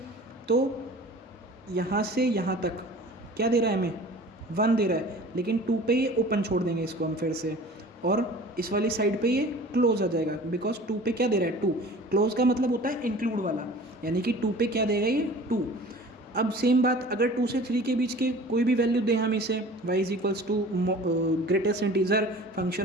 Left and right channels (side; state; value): both; normal; correlation 0.43